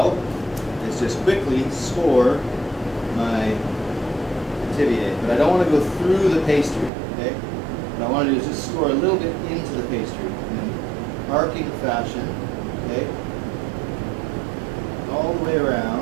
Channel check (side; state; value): left; drops out; at 6.9 s